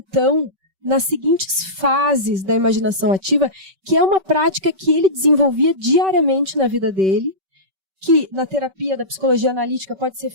nas seguintes fases da imaginação ativa, que é uma prática que ele desenvolvia diariamente na vida dele, que na terapia da psicologia analítica pode ser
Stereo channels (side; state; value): left; late; 5.2 ms